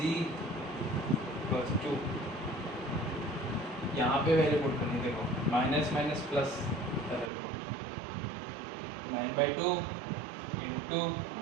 इक्वल्स टू, यहाँ पे वैल्यू पुट करनी, देखो माइनस प्लस 9/2 इंटू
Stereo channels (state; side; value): drops out; left; at 7.3 s